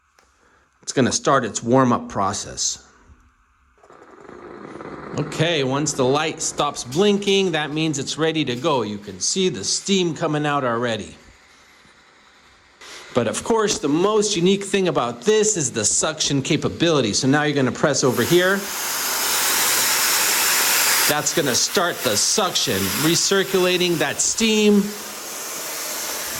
It's going to start its warm-up process. Okay, once the light stops blinking, that means it's ready to go. You can see the steam coming out already. But of course, the most unique thing about this is the suction capability. So now you're going to press over here. That's going to start the suction, recirculating that steam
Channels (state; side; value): identical; both; correlation 1.00